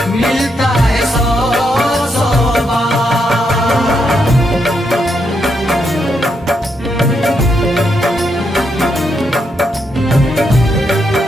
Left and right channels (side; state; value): both; normal; correlation 0.80